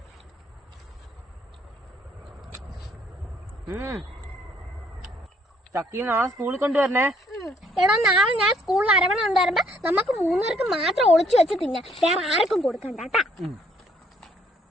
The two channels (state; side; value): normal; both; correlation 0.65